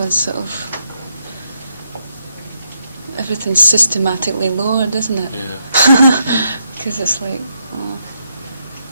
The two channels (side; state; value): both; inverted; correlation -0.79